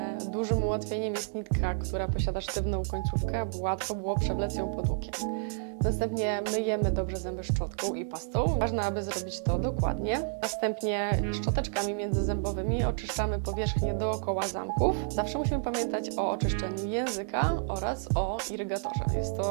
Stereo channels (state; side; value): silent; left; digital silence